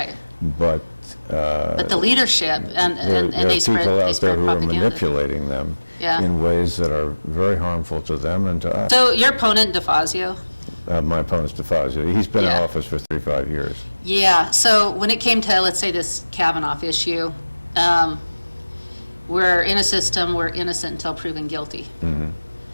But the leadership, and there they are spread people out there who are propaganda. manipulating them in ways that are very harmful to them and to us. So your opponent, DeFazio? My opponent's DeFazio. He's been in office for 35 years. So when it came to, let's say, this Kavanaugh issue, we're in a system, we're innocent until proven guilty.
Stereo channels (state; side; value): inverted; both; correlation -1.00